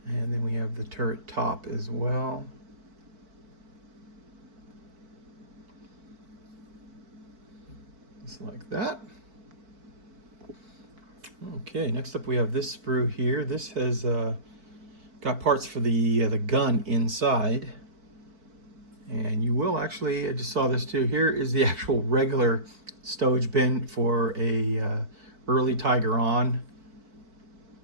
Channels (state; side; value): late; left; 4.5 ms